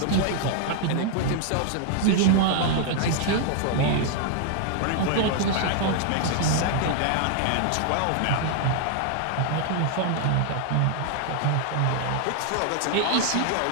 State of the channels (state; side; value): different; both; correlation 0.00